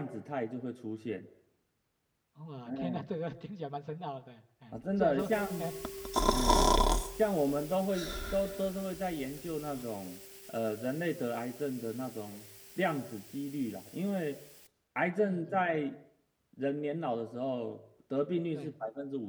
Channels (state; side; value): identical; both; correlation 1.00